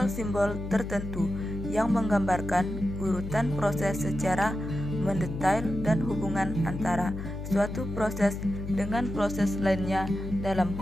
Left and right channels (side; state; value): left; noise; hum, 7 dB below the sound